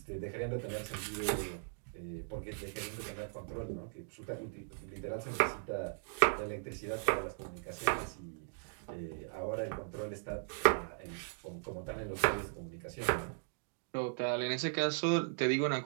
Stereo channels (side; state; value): left; silent; digital silence